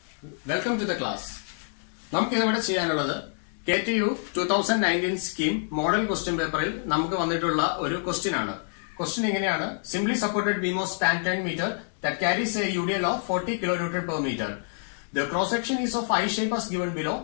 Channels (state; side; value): silent; right; 57 dB below the other